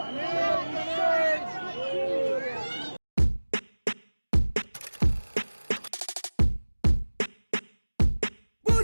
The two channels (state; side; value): inverted; both; correlation -1.00